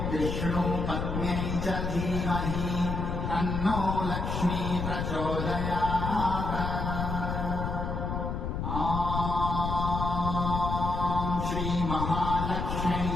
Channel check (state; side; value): noise; left; rumble, 2 dB below the sound